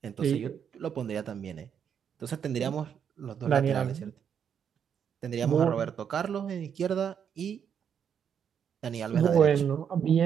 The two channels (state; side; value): quieter; left; 7.9 dB